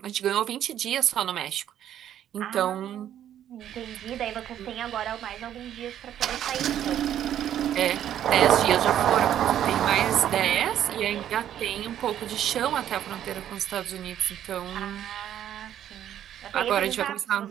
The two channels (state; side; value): quieter; left; 10.8 dB